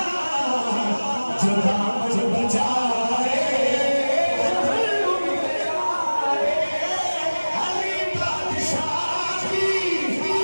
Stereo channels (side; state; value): both; inverted; correlation -1.00